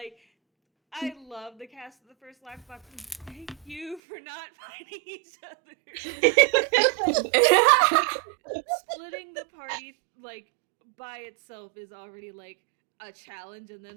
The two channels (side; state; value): left; drops out; at 4.0 s